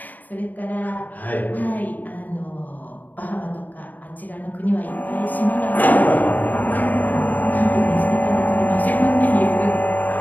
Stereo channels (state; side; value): late; right; 0.083 ms